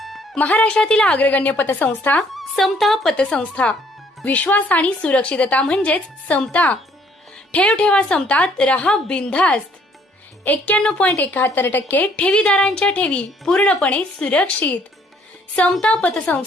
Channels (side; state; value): both; normal; correlation 0.63